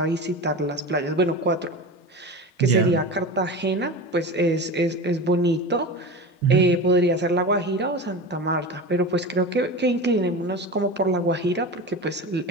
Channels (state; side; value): normal; both; correlation 0.28